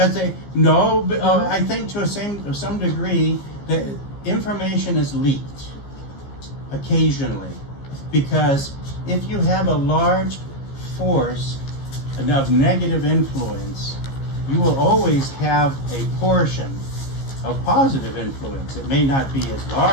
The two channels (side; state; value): right; late; 15 ms